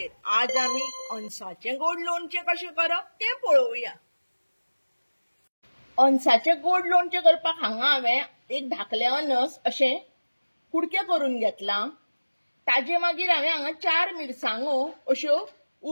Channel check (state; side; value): inverted; both; correlation -1.00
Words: आज आमी अनसाचे गोड लोणचे कशें करप ते पळोवया। अनसाचे गोड लोणचे करपाक हांगा हांवें एक धाकले अनस अशें कुडके करून घेतला। ताजे मागीर हांवें हांगा 4 मिरसांगो अश्यो